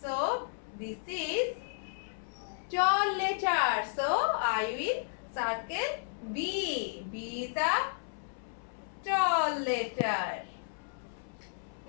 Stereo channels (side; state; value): right; silent; 56 dB below the other